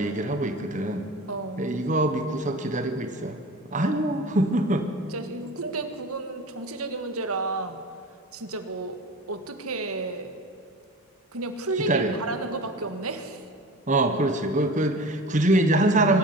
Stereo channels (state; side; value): normal; both; correlation 0.36